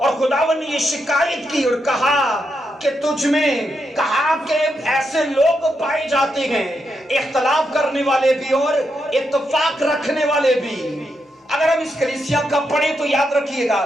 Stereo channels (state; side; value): normal; both; correlation 0.83